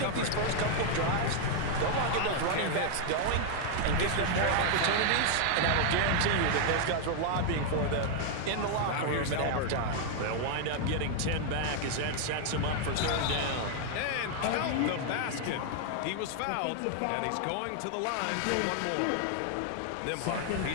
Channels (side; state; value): both; different; correlation 0.00